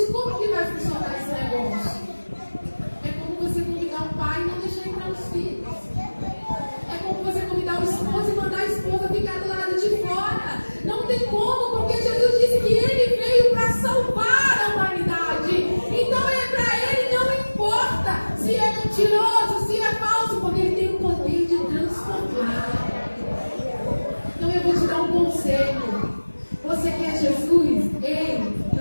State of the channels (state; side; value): inverted; both; correlation -1.00